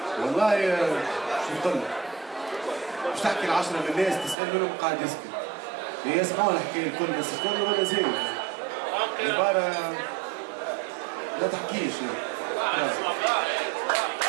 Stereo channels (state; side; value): drops out; left; at 4.4 s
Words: والله شو بقول لك؟ مش تحكي ل10 من الناس تسأل منهم قاعد يسكت. يسمعوا الحكاية الكل بس الكل ولا زين. عبارة لا تحكيش يعني.